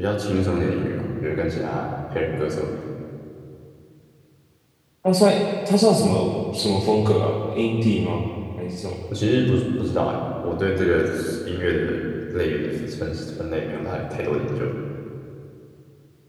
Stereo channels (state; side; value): identical; both; correlation 1.00